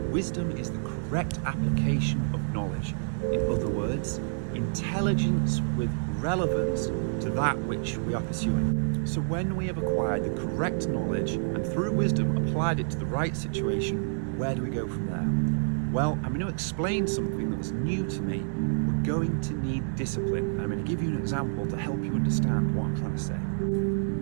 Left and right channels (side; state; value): left; silent; 59 dB below the other